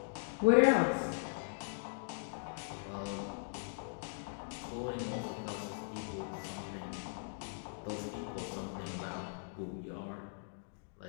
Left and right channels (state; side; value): silent; right; digital silence